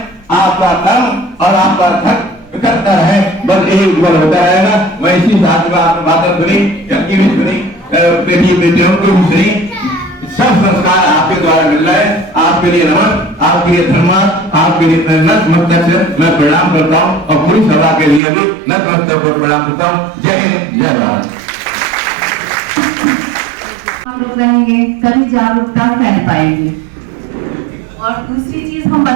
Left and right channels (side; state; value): left; drops out; at 18.2 s